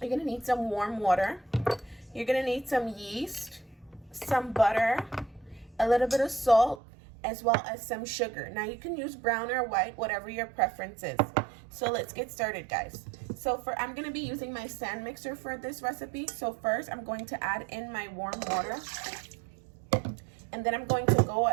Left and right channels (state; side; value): drops out; left; at 6.8 s